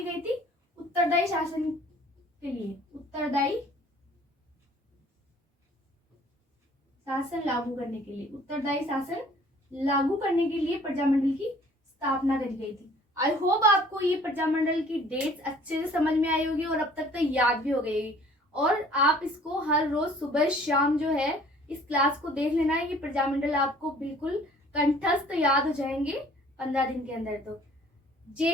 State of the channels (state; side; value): normal; both; correlation 0.54